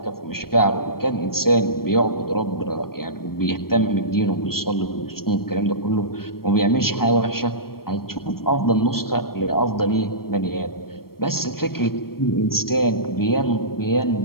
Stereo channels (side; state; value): right; late; 0.94 ms